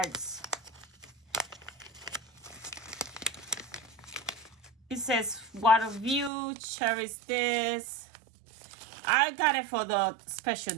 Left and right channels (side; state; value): left; drops out; at 6.3 s